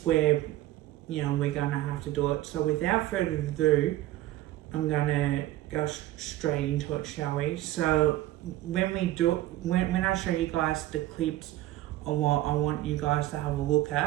where we're going to have to do it. So without further ado, I'm going to go straight into it, shall we? So when I show you guys the clips of what I want you guys to have a look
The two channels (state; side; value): quieter; left; 15.4 dB